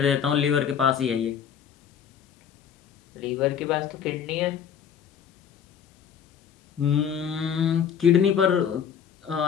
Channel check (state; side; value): quieter; right; 8.1 dB